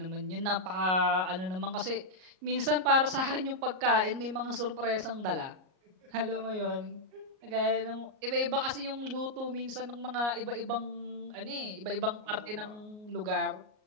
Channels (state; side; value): late; left; 38 ms